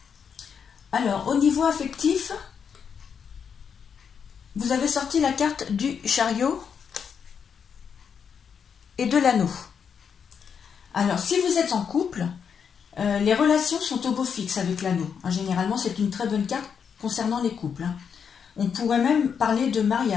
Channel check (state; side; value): quieter; right; 6.9 dB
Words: Alors, au niveau affectif, vous avez sorti la carte du chariot et de l'anneau. Alors, si vous êtes en couple, les relations sont au beau fixe avec l'anneau. Généralement, c'est une très bonne carte concernant les couples. On pourrait même parler de